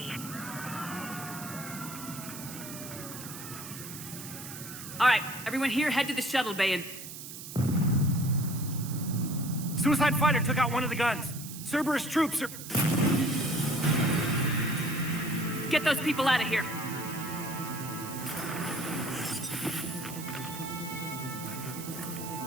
All right, everyone here, head to the shuttle bay and... Suicide fighter took out one of the guns. Cerberus troops are... Get those people out of here.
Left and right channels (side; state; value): right; noise; hiss, 11 dB below the sound